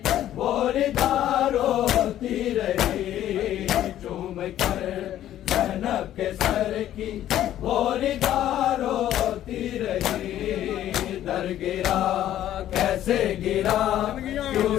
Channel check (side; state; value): right; quieter; 12.2 dB